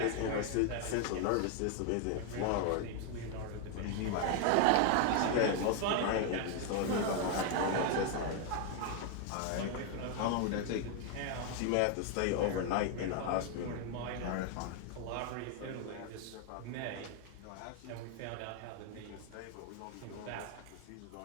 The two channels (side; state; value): both; different; correlation 0.00